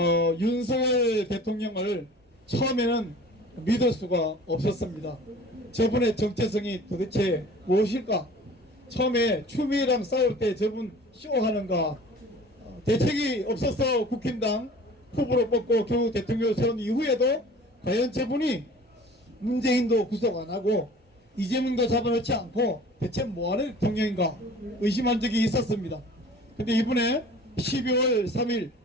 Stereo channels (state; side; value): normal; both; correlation 0.45